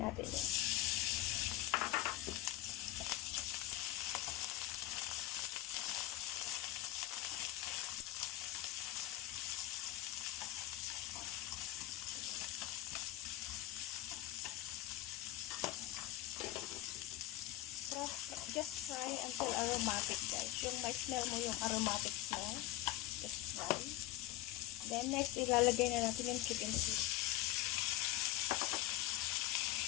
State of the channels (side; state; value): right; quieter; 15.1 dB